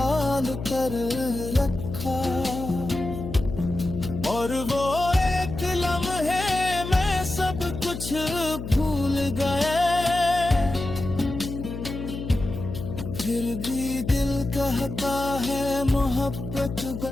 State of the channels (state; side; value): noise; left; hum, 8 dB below the sound